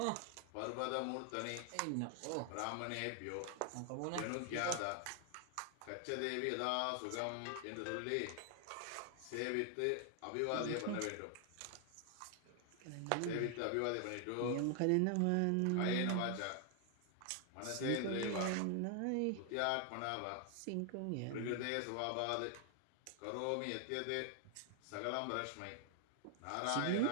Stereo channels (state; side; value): different; both; correlation 0.00